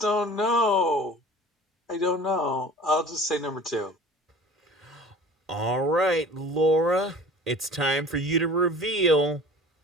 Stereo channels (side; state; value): both; normal; correlation 0.43